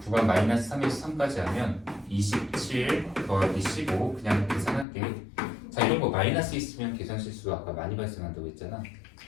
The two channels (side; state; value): right; drops out; at 4.9 s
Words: 구간 마이너스 3에서 3까지 하면 27 더하기 15 그냥 계산할게. 자, 이런 거 마이너스 있으면 계산 실수가 아까 많이 발생한다고 했잖아.